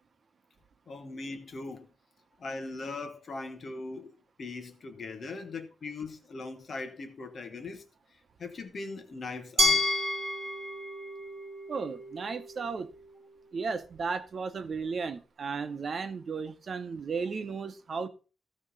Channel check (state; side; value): normal; both; correlation 0.76